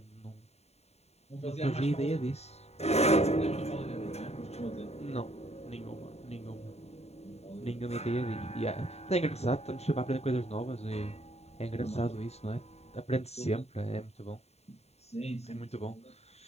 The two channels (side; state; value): right; late; 0.31 ms